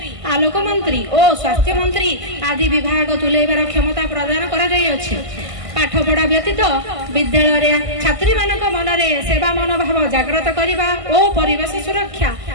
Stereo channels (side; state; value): left; late; 1.5 ms